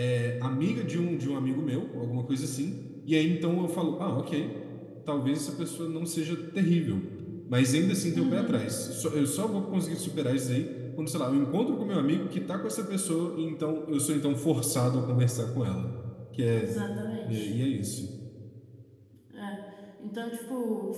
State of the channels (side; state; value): both; identical; correlation 1.00